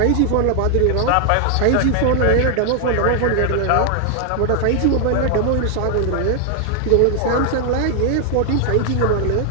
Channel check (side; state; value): both; different; correlation 0.00